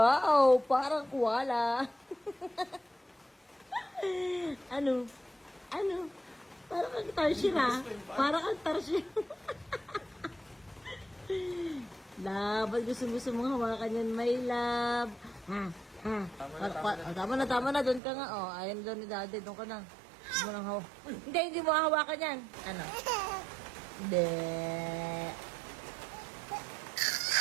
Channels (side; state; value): left; drops out; at 18.0 s